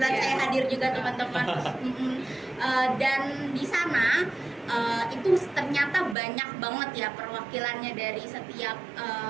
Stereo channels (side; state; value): left; drops out; at 6.2 s